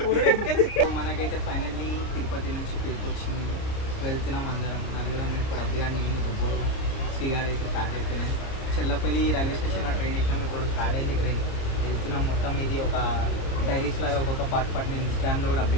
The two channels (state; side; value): late; right; 30 ms